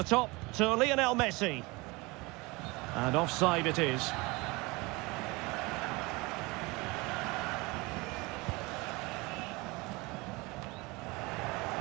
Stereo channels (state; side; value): quieter; left; 24.6 dB